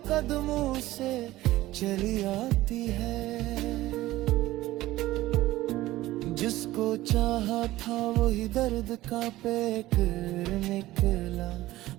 कदमों से चली आती है। जिसको चाहा था वही दर्द का पैकर निकला,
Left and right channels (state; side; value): quieter; left; 16.7 dB